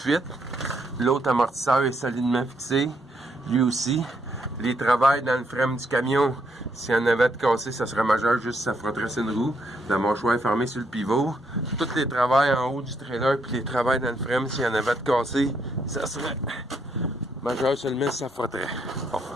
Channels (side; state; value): both; normal; correlation 0.75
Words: L'autre amortisseur est solidement fixé. Lui aussi. Les travails dans le frein du camion, s'il y en avait de cassé, ça serait majeur, juste ça frotterait sur une roue. La mâchoire est fermée sur le pivot. Tous les travails en haut du trailer, puis les travails dans le frein, s'il y en avait de cassé, ça serait majeur seulement si ça frotterait. Bon.